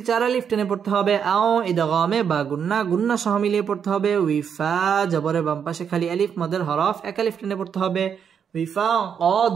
চার আলিফ টেনে পড়তে হবে আও ইদগামে বা গুন্না গুন্না সহ মিলিয়ে পড়তে হবে উইফা জবরে বাম পাশে খালি আলিফ মদের হরফ এক আলিফ টেনে পড়তে হবে উইফা ক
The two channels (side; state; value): left; quieter; 7.5 dB